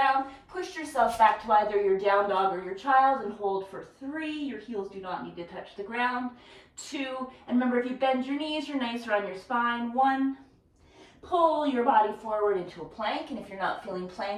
Push yourself back to either your down dog or your child and hold for 3. Your heels do not need to touch the ground. 2, and remember, if you bend your knees, you're nicer on your spine. 1, pull your body forward into a plank, and if you're not feeling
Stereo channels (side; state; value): both; identical; correlation 1.00